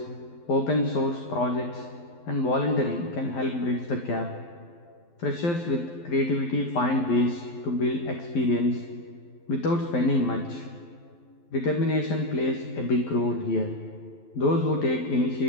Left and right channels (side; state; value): right; late; 12 ms